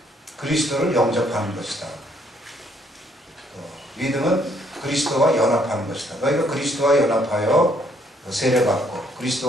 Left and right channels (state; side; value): normal; both; correlation 0.67